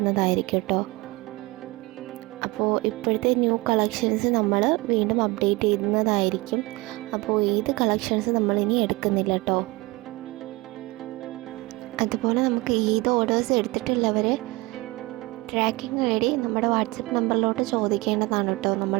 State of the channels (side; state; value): left; quieter; 22.6 dB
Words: കേട്ടോ. അപ്പോൾ ഇപ്പോഴത്തെ ന്യൂ കളക്ഷൻസ് നമ്മൾ വീണ്ടും അപ്ഡേറ്റ് ചെയ്യുന്നതായിരിക്കും. അപ്പോൾ ഈദ് കളക്ഷൻസ് നമ്മളിനി എടുക്കുന്നില്ല കേട്ടോ. അതുപോലെ നമുക്ക് ഈദ് ഓർഡേഴ്സ് എടുത്തിട്ടുള്ളവർ ട്രാക്കിംഗ് ഐ ഡി നമ്മുടെ വാട്സപ്പ് നമ്പറിലോട്ട് ചോദിക്കേണ്ടതാണ് കേട്ടോ.